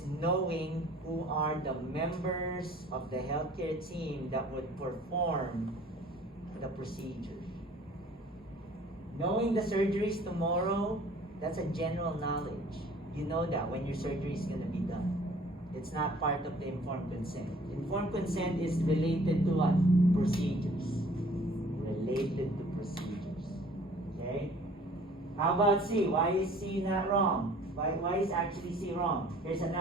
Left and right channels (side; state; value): both; normal; correlation 0.52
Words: knowing who are the members of the healthcare team that would perform the procedure. Knowing the surgeries tomorrow, that's a general knowledge. You know that when your surgery is going to be done. It's not part of the informed consent. Informed consent is related to what? Procedures. Related to procedures. Okay? How about C? Why is C not wrong? Why is actually C wrong? Here's